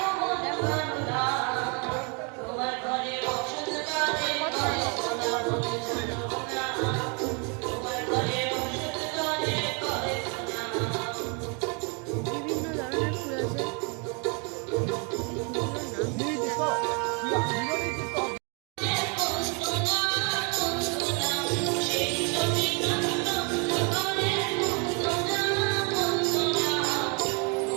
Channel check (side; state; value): left; quieter; 34.9 dB